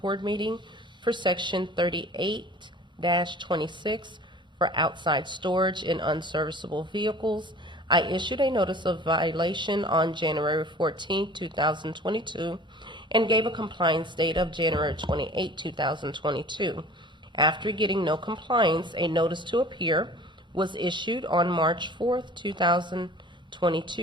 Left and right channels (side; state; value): both; normal; correlation 0.45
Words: Board meeting for Section 38-26 for outside storage in unserviceable vehicles. I issued a notice of violation on January 14, 2022, and gave a compliance date of January 28, 2022. After getting no compliance, a notice to appear was issued on March 4,